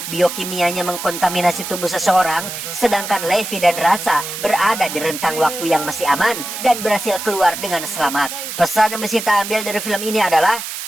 biokimianya mengkontaminasi tubuh seseorang, sedangkan Levi dan Drasa berada di rentang waktu yang masih aman dan berhasil keluar dengan selamat. Pesan yang bisa kita ambil dari film ini adalah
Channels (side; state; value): right; noise; hiss, 7 dB below the sound